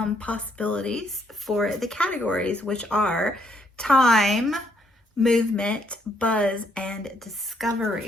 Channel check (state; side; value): normal; both; correlation 0.72